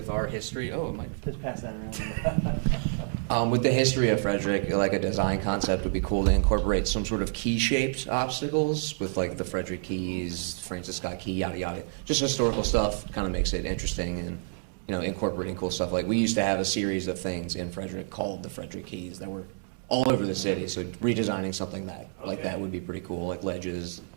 our history, Just pass that around. with the history of Frederick, like a design concept would be cool to incorporate some sort of key-shaped obstacles with like the Frederick keys, Francis Scott Key, yada yada. Just historical stuff kind of makes it interesting and, you know, incorporating cool stuff. Like we used to have a series of things in Frederick called the Frederick Keys that were all over the city. So redesigning something like that would be pretty cool, like ledges,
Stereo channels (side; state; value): left; silent; digital silence